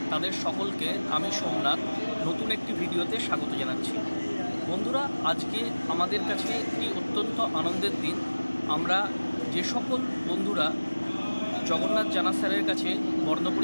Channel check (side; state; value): both; inverted; correlation -1.00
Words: তাদের সকলকে আমি সোমনাথ নতুন একটি ভিডিওতে স্বাগত জানাচ্ছি। বন্ধুরা আজকে আমাদের কাছে একটি অত্যন্ত আনন্দের দিন। আমরা যে সকল বন্ধুরা জগন্নাথ জানা স্যারের কাছে